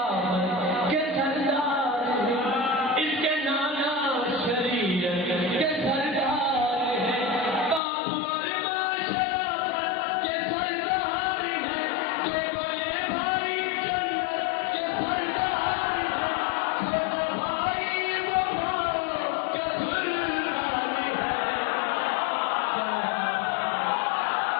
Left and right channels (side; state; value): right; drops out; at 7.8 s